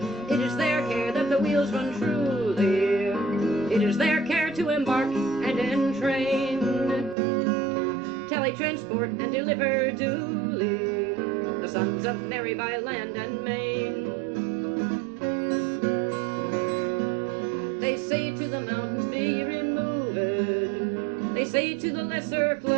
It is their care that the wheels run truly. It is their care to embark and entrain, transport and deliver duly the sons of Mary by land and main. They say to the mountains, be removed. They say to the lesser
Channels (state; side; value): drops out; left; at 7.2 s